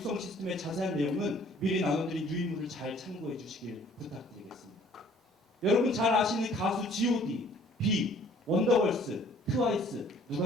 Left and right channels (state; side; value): normal; both; correlation 0.56